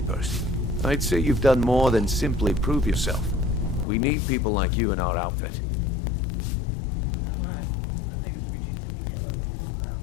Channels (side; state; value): right; drops out; at 3.9 s